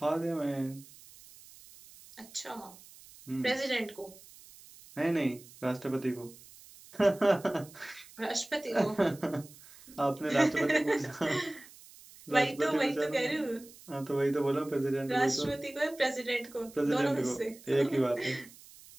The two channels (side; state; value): right; noise; hiss, 21 dB below the sound